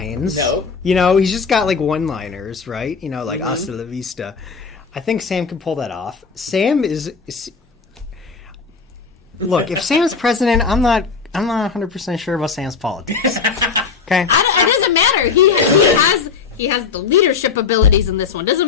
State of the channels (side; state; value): right; quieter; 5.4 dB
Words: No. You know, he's just got like one-liners, right? You know, like hasta la vista. I think Sam can pull that off. Sam is look, if Sam's president, I'm not 100% sure about Sam's politics. Okay? It doesn't matter. He has the leadership abilities in this one. Doesn't